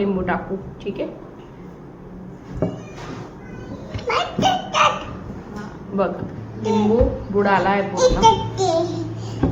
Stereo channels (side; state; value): both; identical; correlation 1.00